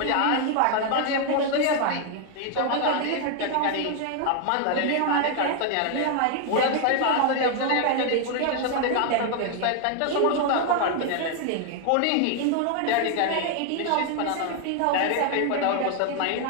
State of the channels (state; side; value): different; both; correlation 0.00